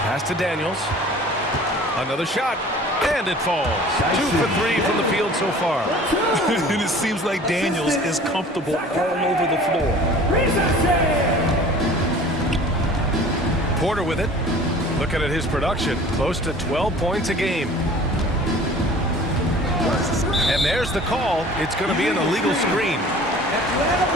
Pass to Daniels. Another shot. And it falls. 2 for 3 from the field so far. And it seems like Daniels is comfortable all over the floor. Porter with it. Looking at his production, close to 12 points a game. And there's the call. It's going to be an illegal screen.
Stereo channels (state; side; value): normal; both; correlation 0.46